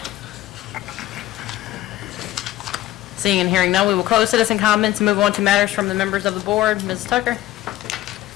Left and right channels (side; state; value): right; quieter; 14.9 dB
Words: Seeing and hearing none, we will close citizen comments and move on to matters from the members of the board. Ms. Tucker?